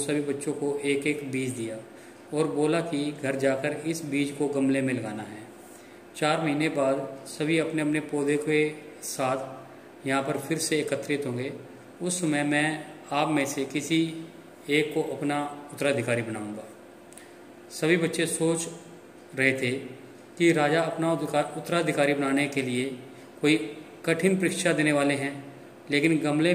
बच्चों को एक एक बीज दिया और बोला कि घर जाकर इस बीज को गमले में लगाना है। 4 महीने बाद सभी अपने अपने पौधे के साथ यहाँ पर फिर से एकत्रित होंगे। उस समय मैं आप में से किसी एक को अपना उत्तराधिकारी बनाऊंगा। सभी बच्चे सोच रहे थे कि राजा अपना उत्तराधिकारी बनाने के लिए कोई कठिन परीक्षा देने वाले हैं, लेकिन गमले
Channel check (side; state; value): both; identical; correlation 1.00